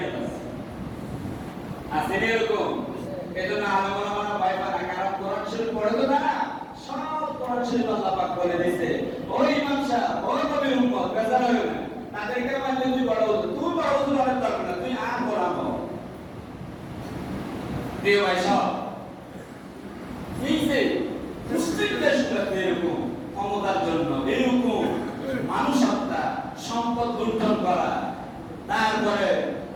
শরীফ পড়ে তো না, সব কোরআন শরীফ আল্লাহ পাক বলে দিয়েছে ওই ইমাম সাহেব ওই নবীর উম্মত বেজার হবে না, তাদেরকে মানলে তুই বড় হতো, তুই বড় হতো অনেক দরকার না, তুই আর কোরআন হও। প্রিয় ভাই সব এই যে মুসলিম দেশগুলোতে এরকম ক্ষমতার জন্য এরকম মানুষ হত্যা, সম্পদ লুণ্ঠন করা, তারপরে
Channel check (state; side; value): identical; both; correlation 1.00